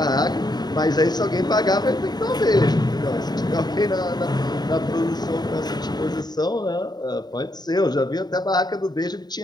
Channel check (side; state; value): right; late; 0.20 ms